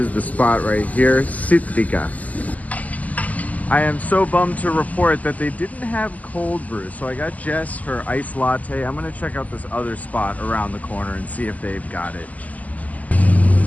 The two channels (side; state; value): right; late; 0.076 ms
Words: the spot right here, Citrica. I am so bummed to report that they didn't have cold brew, so I got Jess her iced latte. I'm gonna check out this other spot around the corner and see if they've got it.